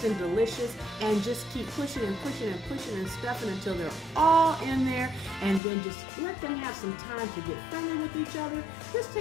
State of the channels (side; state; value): right; drops out; at 5.6 s